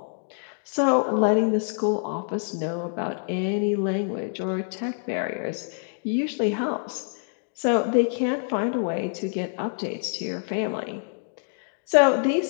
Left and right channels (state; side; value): silent; right; digital silence